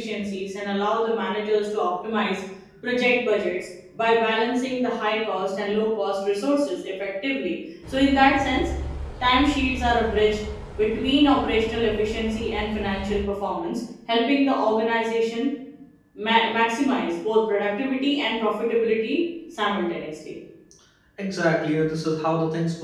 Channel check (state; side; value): identical; both; correlation 1.00